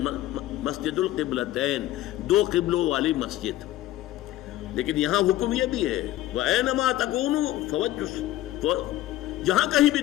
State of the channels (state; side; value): quieter; right; 14.9 dB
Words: مسجد القبلتین، 2 قبلوں والی مسجد. لیکن یہاں حکم یہ بھی ہے وَأَيْنَمَا تَكُونُوا فَوَجُّوا، جہاں کہیں بھی